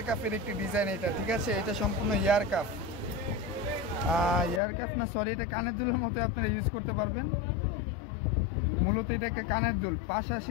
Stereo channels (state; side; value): drops out; right; at 4.6 s